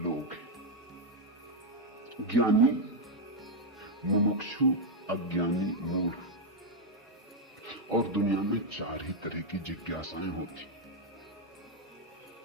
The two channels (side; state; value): both; normal; correlation 0.00